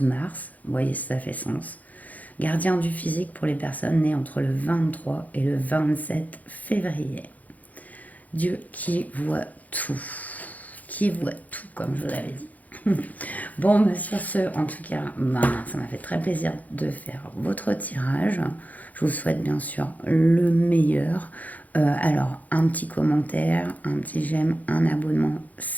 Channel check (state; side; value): late; right; 0.078 ms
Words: mars. Vous voyez, ça fait sens. Gardien du physique pour les personnes nées entre le 23 et le 27 février. Dieu qui voit tout. Qui voit tout, comme je vous l'avais dit. Bon, bah sur ce, en tout cas, ça m'a fait très plaisir de faire votre tirage. Je vous souhaite bien sûr le meilleur. Alors, un petit commentaire, un petit j'aime, un abonnement,